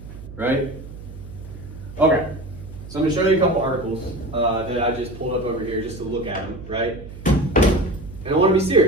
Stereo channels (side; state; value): right; noise; hum, 14 dB below the sound